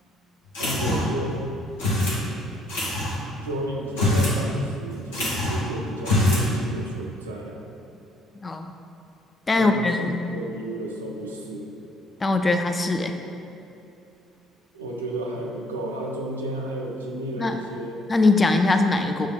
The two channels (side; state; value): both; normal; correlation 0.66